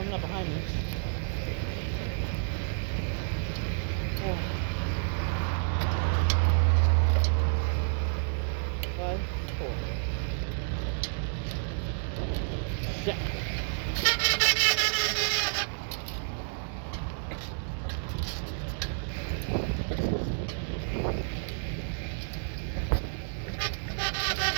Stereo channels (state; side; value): silent; left; 58 dB below the other